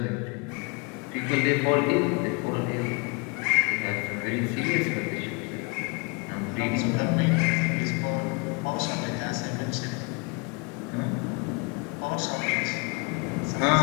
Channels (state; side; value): quieter; right; 30.4 dB